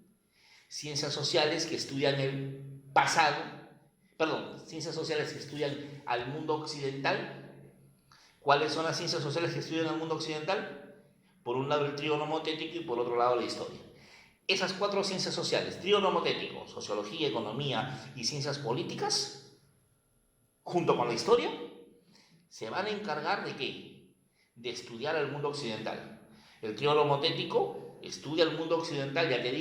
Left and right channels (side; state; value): both; identical; correlation 1.00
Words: Ciencias sociales que estudian el pasado, ciencias sociales que estudian al mundo occidental. ¿Cuáles son las ciencias sociales que estudian al mundo occidental? Por un lado el trío nomotético y por otro lado la historia. Esas cuatro ciencias sociales, trío nomotético, sociología, economía y ciencias políticas, junto con la historia, se van a encargar ¿de qué? De estudiar al mundo occidental. El trío nomotético estudia el mundo occidental, ya te